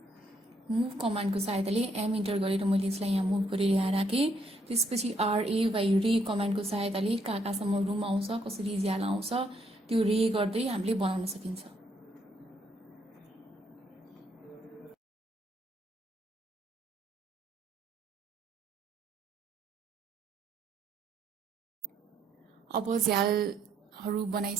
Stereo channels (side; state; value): both; normal; correlation 0.71